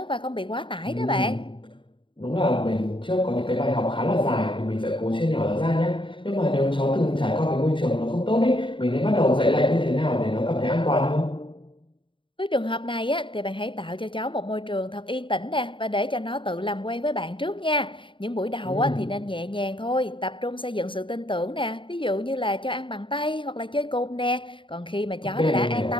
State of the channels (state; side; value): late; right; 0.24 ms